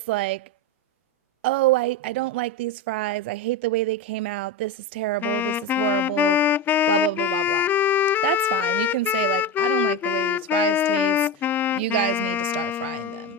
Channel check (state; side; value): normal; both; correlation 0.18